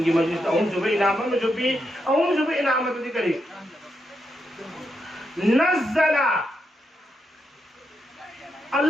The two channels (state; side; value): normal; both; correlation 0.83